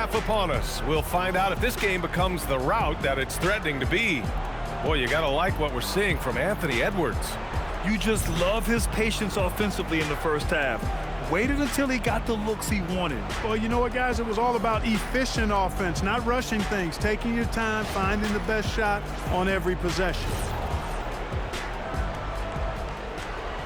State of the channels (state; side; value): identical; both; correlation 1.00